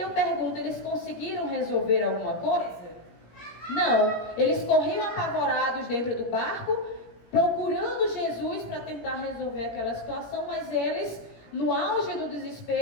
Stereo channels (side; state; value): right; late; 17 ms